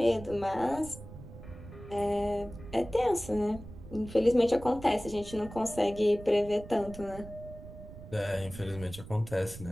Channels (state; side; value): noise; right; rumble, 14 dB below the sound